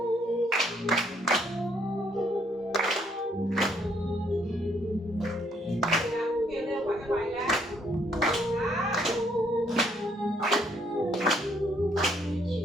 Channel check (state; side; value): normal; both; correlation 0.69